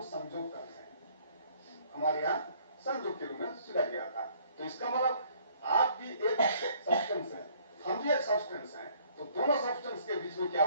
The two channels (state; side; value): inverted; both; correlation -0.61